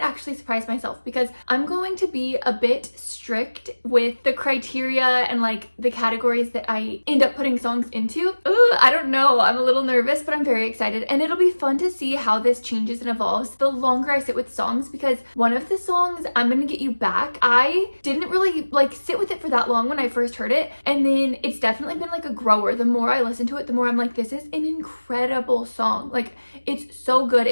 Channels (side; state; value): both; inverted; correlation -1.00